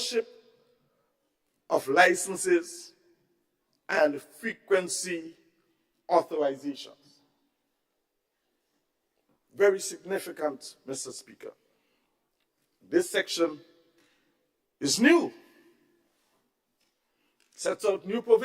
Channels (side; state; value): both; identical; correlation 1.00